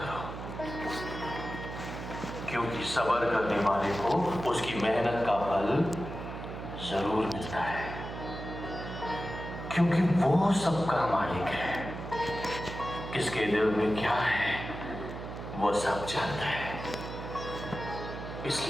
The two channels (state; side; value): noise; right; hum, 9 dB below the sound